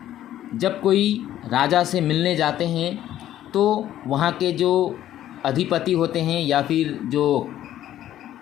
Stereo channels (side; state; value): right; quieter; 12.4 dB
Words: जब कोई राजा से मिलने जाते हैं तो वहाँ के जो अधिपति होते हैं या फिर जो